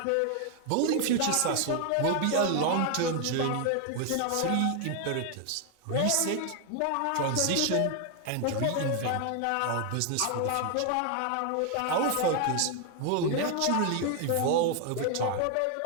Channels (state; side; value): different; both; correlation 0.00